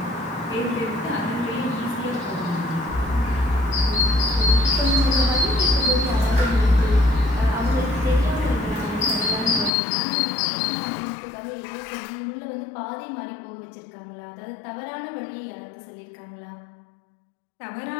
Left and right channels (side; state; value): right; drops out; at 9.7 s